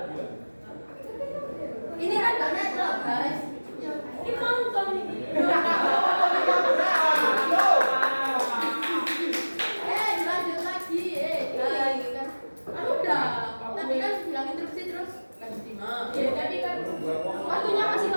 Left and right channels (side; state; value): both; inverted; correlation -1.00